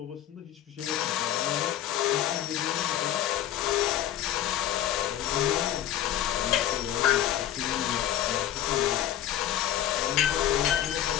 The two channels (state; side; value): quieter; right; 11.8 dB